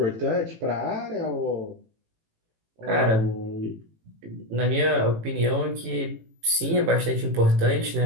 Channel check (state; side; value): late; left; 18 ms